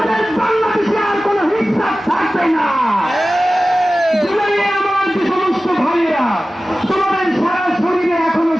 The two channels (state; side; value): normal; both; correlation 0.96